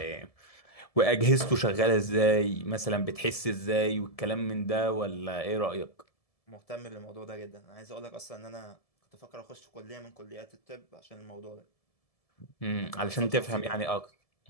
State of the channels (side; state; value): right; late; 1.7 ms